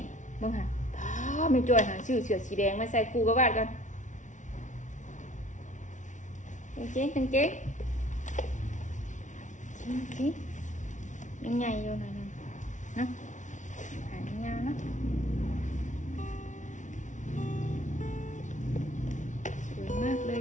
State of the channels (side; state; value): right; late; 0.36 ms